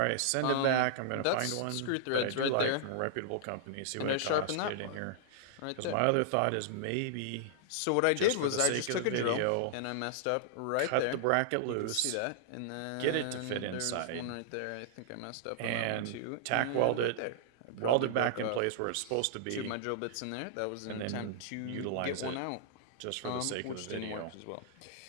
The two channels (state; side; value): different; both; correlation -0.01